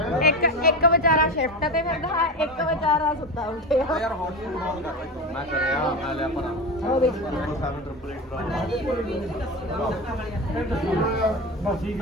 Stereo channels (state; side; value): normal; both; correlation 0.23